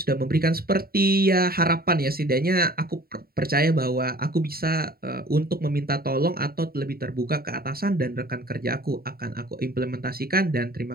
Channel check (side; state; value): left; late; 0.44 ms